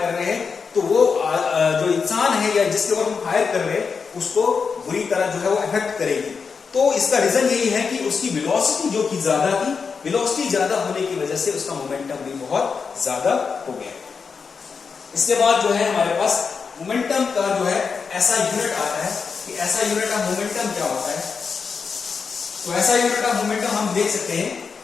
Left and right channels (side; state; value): right; quieter; 5.5 dB